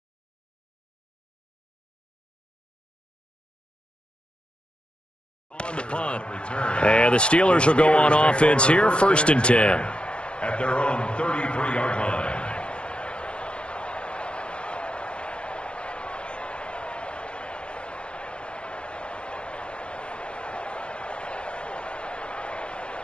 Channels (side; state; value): right; late; 0.057 ms